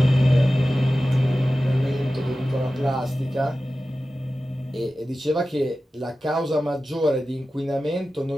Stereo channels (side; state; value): both; normal; correlation 0.94